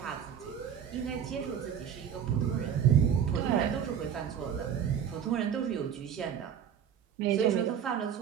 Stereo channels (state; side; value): quieter; left; 8.6 dB